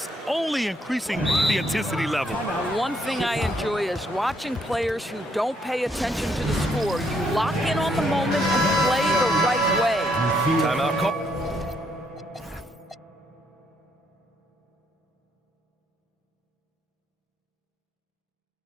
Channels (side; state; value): both; normal; correlation 0.72